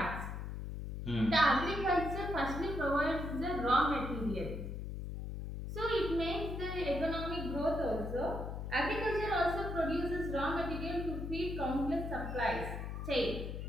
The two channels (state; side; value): noise; left; hum, 6 dB below the sound